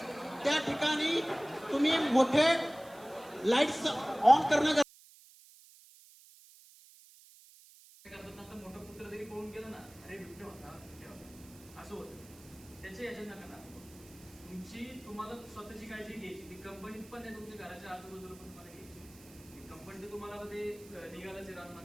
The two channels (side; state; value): right; noise; hiss, 22 dB below the sound